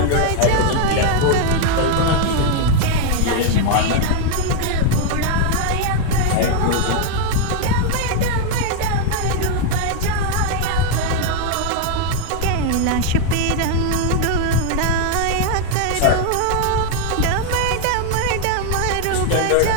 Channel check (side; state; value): both; different; correlation 0.00